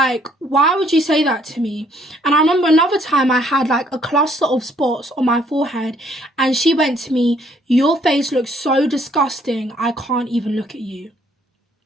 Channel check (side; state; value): both; normal; correlation 0.65